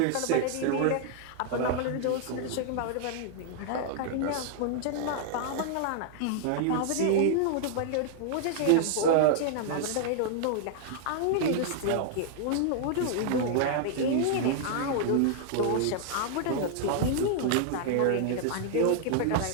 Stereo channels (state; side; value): different; both; correlation -0.01